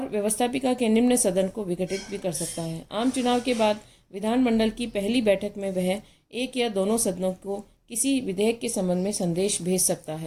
व्यवस्थापिका के निम्न सदन को विघटित भी कर सकता है। आम चुनाव के बाद विधानमंडल की पहली बैठक में वह एक या दोनों सदनों को किसी विधेयक के संबंध में संदेश भेज सकता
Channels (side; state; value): both; identical; correlation 1.00